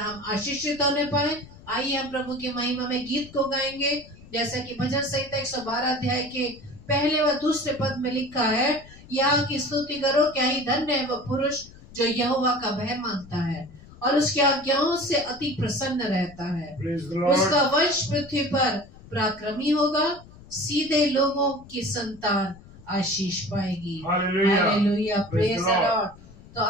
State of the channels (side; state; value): left; noise; rumble, 21 dB below the sound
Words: आशीषित होने पाए। आइए हम प्रभु की महिमा में गीत को गाएंगे, जैसा कि भजन संहिता 112 अध्याय के पहले व दूसरे पद में लिखा है, यहाँ की स्तुति करो, क्या ही धन्य है वह पुरुष जो यहोवा का भय मानता है और उसकी आज्ञाओं से अति प्रसन्न रहता है। उसका वंश पृथ्वी पर पराक्रमी होगा, सीधे लोगों की संतान आशीष पाएगी। Hallelujah, praise the Lord. तो